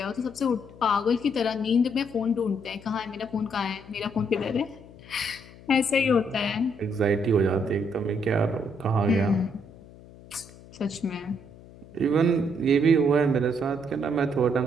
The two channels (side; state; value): left; noise; hum, 20 dB below the sound